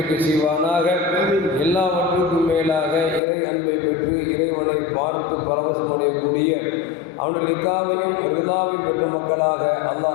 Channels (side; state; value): right; drops out; at 3.2 s